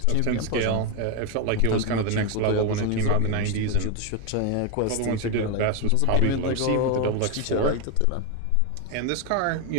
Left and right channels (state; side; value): different; both; correlation 0.02